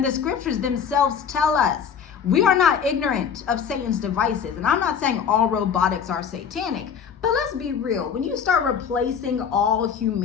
the scriptures themselves tell us we are not ignorant of Satan's devices. And I'm not saying all robotics are satanic, but let's be real. When you start replacing all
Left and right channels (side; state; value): right; quieter; 7.2 dB